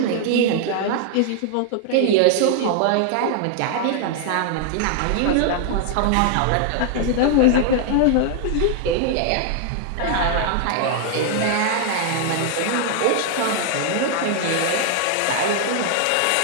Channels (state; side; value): different; both; correlation 0.00